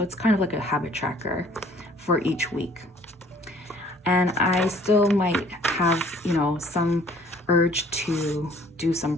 it's kind of like a habit tracker for each week. And I still might have, you know, some urge to do some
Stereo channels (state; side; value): normal; both; correlation 0.57